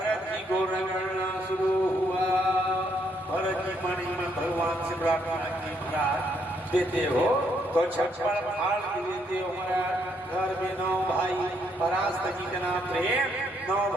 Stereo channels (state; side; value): normal; both; correlation 0.73